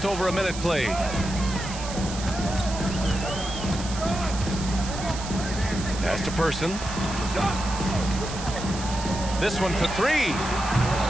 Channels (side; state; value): right; noise; hiss, 10 dB below the sound